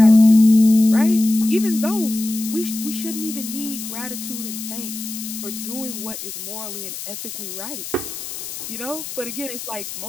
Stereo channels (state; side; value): noise; left; hiss, 9 dB below the sound